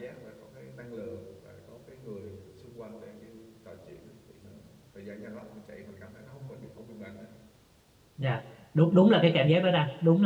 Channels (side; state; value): both; identical; correlation 1.00